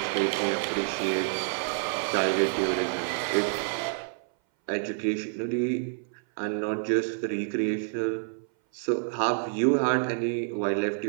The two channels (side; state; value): left; silent; 59 dB below the other